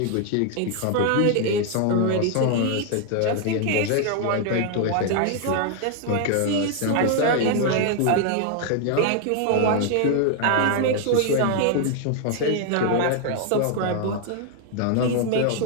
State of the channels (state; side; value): different; both; correlation 0.00